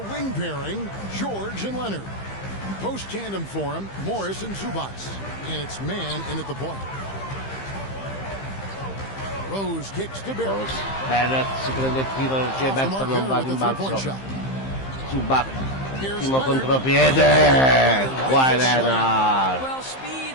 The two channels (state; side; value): late; right; 15 ms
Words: wing pairing, George and Leonard. Post tandem for him, Morris and Zubac. And it's man in at the point. Rose kicks to Barrett. Barrett si prende il tiro, Gilberto non va a rimbalzo. Zubac, primo contropiede. Kawhi Leonard. Well,